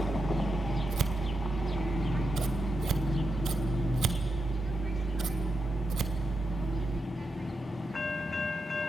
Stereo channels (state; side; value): normal; both; correlation 0.86